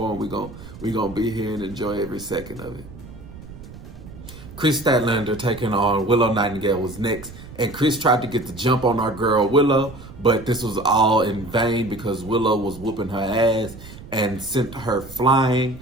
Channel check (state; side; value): noise; right; rumble, 16 dB below the sound